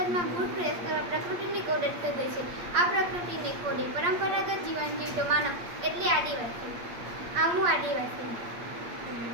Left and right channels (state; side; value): late; left; 8.5 ms